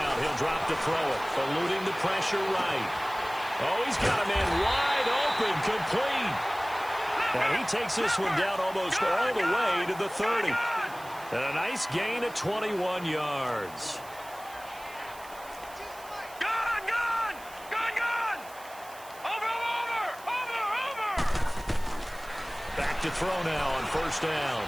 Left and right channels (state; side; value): noise; right; hiss, 19 dB below the sound